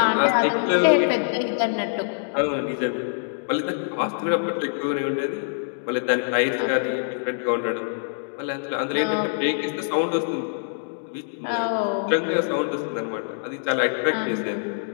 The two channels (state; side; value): silent; right; digital silence